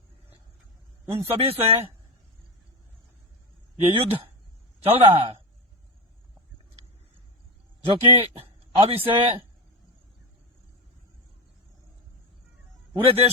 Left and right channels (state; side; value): normal; both; correlation 0.17